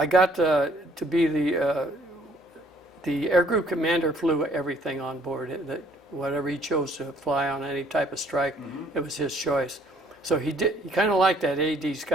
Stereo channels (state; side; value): normal; both; correlation 0.62